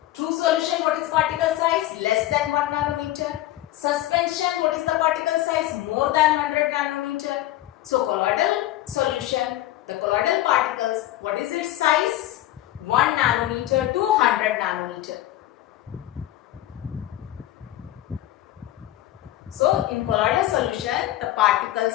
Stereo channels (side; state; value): right; quieter; 14.7 dB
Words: True solution, what is particle size? Less than 1 nanometer. Suspension, what is the particle size? More than 100 nanometer. So colloidal solution, the colloidal particles, what is its size? 1 nanometer to 100 nanometer. So in colloidal solution, the particle